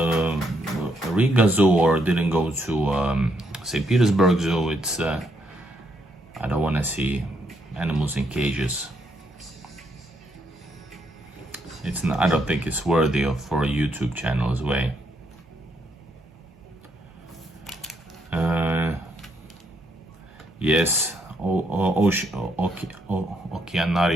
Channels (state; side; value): normal; both; correlation 0.75